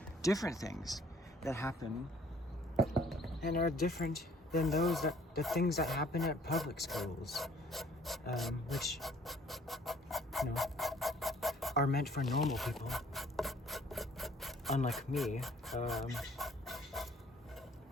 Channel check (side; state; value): both; normal; correlation 0.57